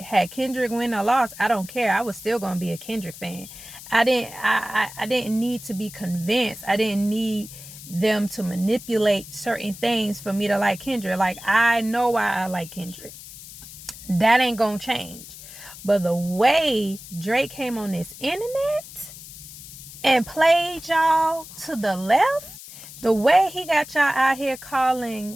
had Kendrick win or lost, I don't care. I was still gonna be a Kendrick fan. I didn't need to be convinced. I didn't need them to manipulate certain things for me to like Kendrick. Like, I know why I like Kendrick. That ain't gonna change. But the way Drake came on this internet and played y'all to the left, the way he got y'all out here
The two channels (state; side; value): noise; left; hiss, 15 dB below the sound